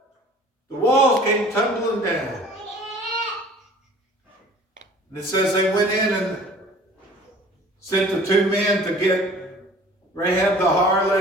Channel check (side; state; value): both; normal; correlation 0.48